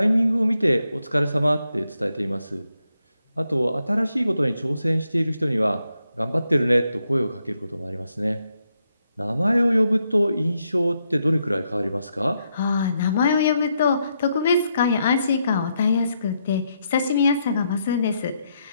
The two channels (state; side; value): inverted; both; correlation -0.80